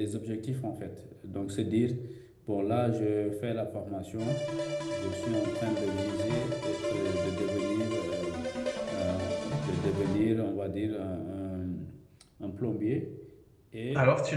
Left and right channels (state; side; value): identical; both; correlation 1.00